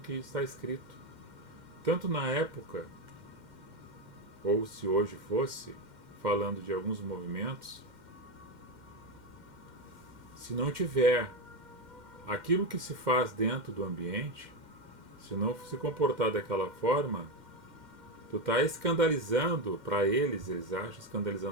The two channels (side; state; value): left; late; 2.1 ms